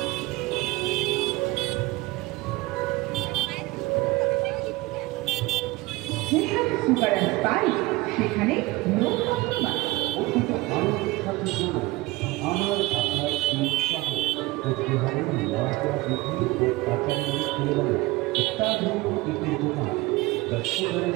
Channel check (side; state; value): left; quieter; 20.9 dB